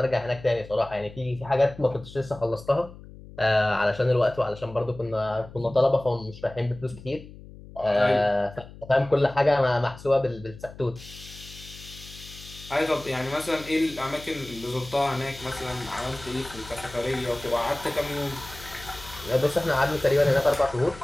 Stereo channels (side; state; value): left; noise; hum, 17 dB below the sound